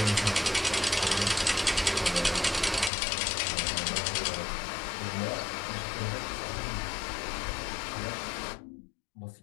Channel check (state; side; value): drops out; right; at 2.9 s